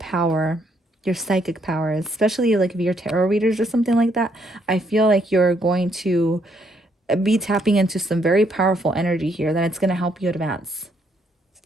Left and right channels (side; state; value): both; normal; correlation 0.72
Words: your psychic power, especially like if you're tarot readers or something like that. I feel like you're going to be tapping into some very powerful energy here that it's going to help you advance.